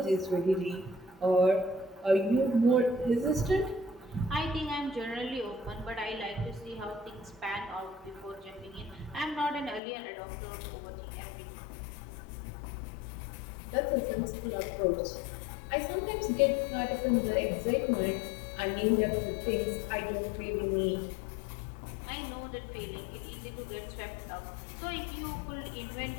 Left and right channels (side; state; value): right; drops out; at 9.8 s